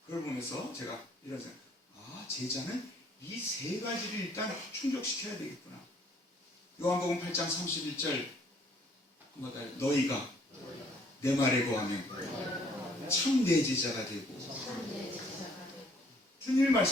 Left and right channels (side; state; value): both; normal; correlation 0.62